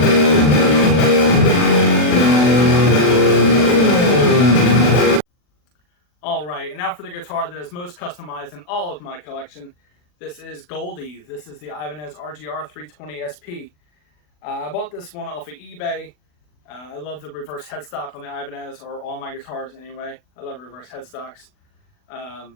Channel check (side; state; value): right; late; 40 ms